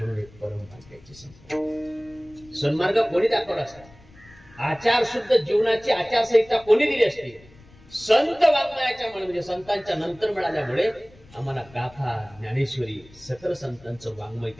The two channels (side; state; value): left; noise; rumble, 25 dB below the sound